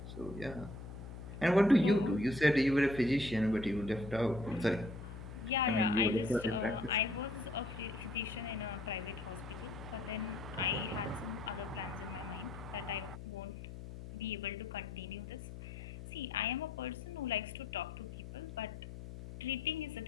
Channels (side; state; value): left; noise; hum, 11 dB below the sound